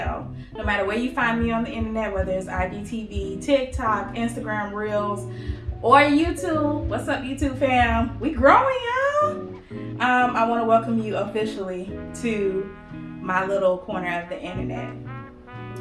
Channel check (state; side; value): identical; both; correlation 1.00